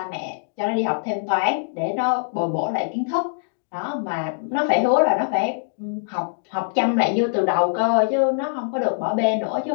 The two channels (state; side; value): silent; right; digital silence